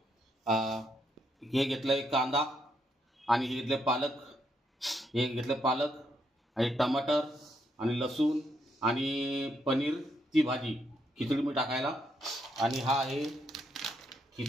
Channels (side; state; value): both; normal; correlation 0.77